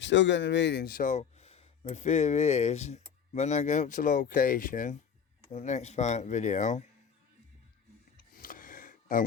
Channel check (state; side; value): quieter; right; 7.3 dB